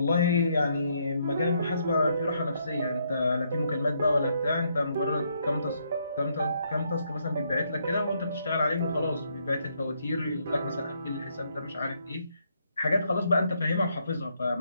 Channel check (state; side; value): inverted; both; correlation -0.74